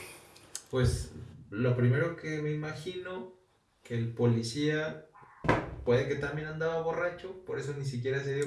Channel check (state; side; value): identical; both; correlation 1.00